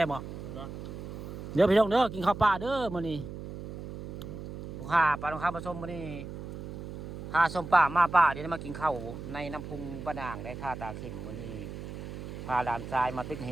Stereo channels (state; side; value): noise; right; hum, 9 dB below the sound